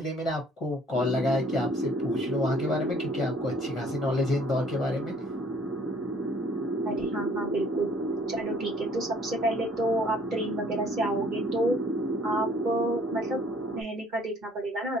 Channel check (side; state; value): both; normal; correlation 0.58